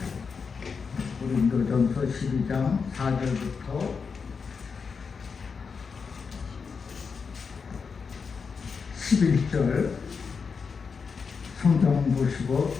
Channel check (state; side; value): quieter; right; 5.5 dB